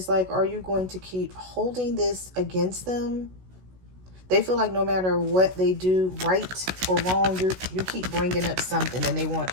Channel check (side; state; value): left; late; 16 ms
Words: like, are you going to keep holding this against them? They feel like no matter what they do, right or wrong, you keep bringing up something, and they want